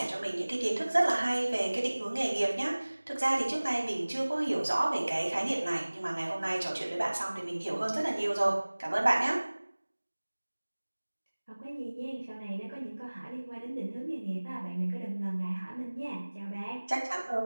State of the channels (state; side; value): inverted; both; correlation -1.00